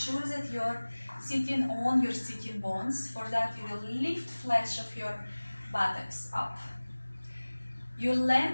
that you're sitting on your sitting bones. For that, you will lift flesh of your buttocks up. You're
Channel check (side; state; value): both; inverted; correlation -1.00